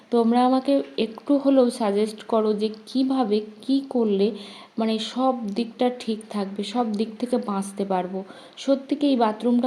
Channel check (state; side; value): identical; both; correlation 1.00